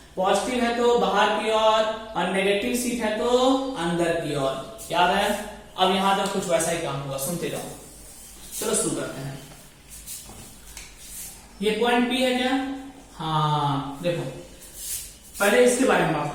Positive है तो बाहर की ओर और नेगेटिव सीट है तो अंदर की ओर। याद है, अब यहां तक कुछ वैसा ही काम होगा, सुनते जाओ। चलो शुरू करते हैं। ये पॉइंट पी है क्या, हाँ देखो, पहले इसके बारे में बात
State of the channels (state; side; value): identical; both; correlation 1.00